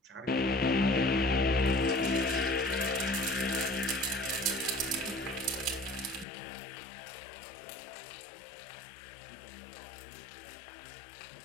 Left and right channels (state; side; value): drops out; right; at 6.2 s